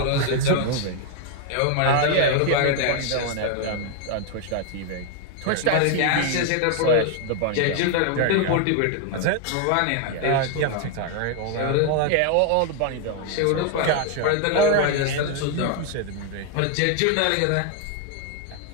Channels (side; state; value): both; different; correlation 0.00